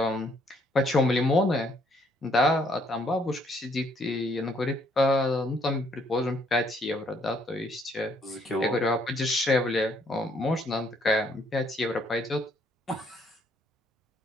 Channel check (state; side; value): normal; both; correlation 0.68